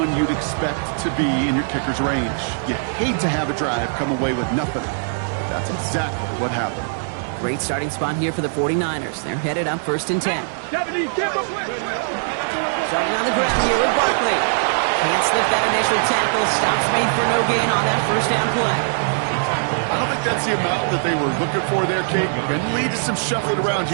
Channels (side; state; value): left; silent; 63 dB below the other